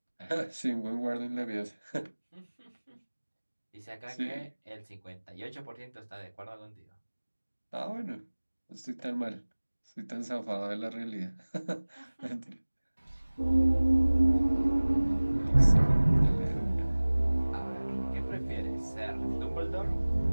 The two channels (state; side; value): inverted; both; correlation -1.00